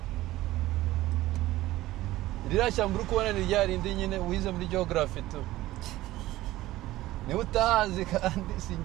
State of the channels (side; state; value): left; quieter; 16.5 dB